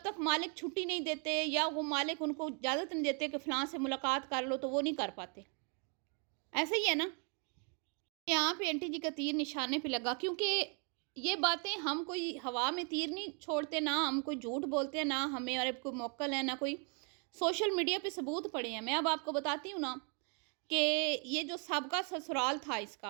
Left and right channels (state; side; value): quieter; left; 37.9 dB